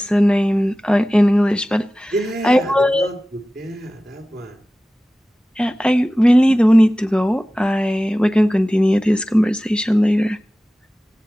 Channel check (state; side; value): normal; both; correlation 0.97